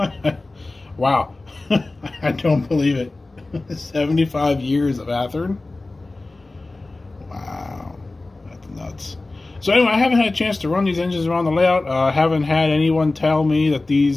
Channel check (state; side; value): quieter; right; 3.1 dB